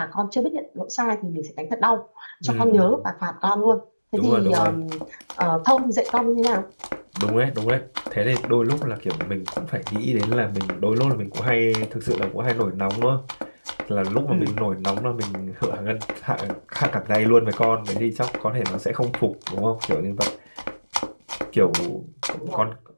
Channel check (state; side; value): inverted; both; correlation -1.00